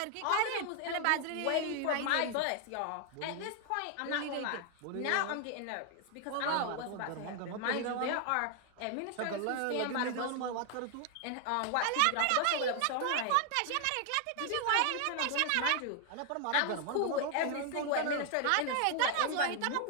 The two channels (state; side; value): different; both; correlation 0.00